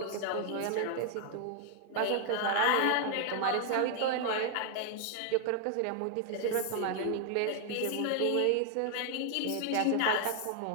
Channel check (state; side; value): different; both; correlation 0.00